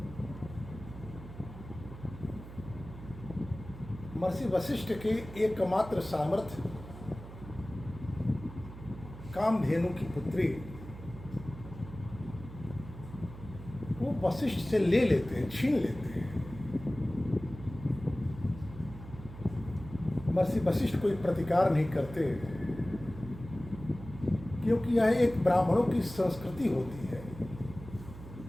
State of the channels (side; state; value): right; noise; hum, 14 dB below the sound